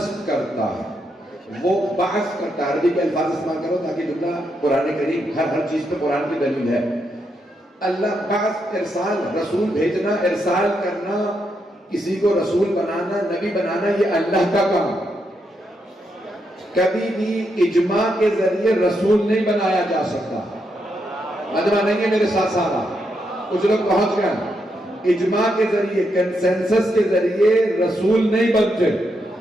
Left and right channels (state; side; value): normal; both; correlation 0.81